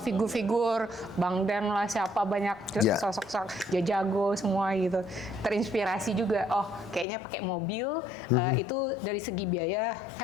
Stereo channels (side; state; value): right; drops out; at 7.1 s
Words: figur-figur Bang Dan lah siapa banyak sosok-sosok Jajago semua gitu. Terinspirasi juga. Oh, kayaknya pakai mobil itu dari segi biaya